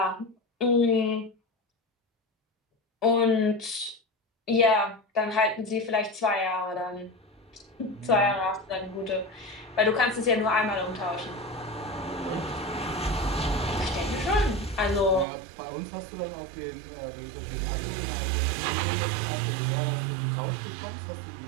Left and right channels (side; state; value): left; drops out; at 15.2 s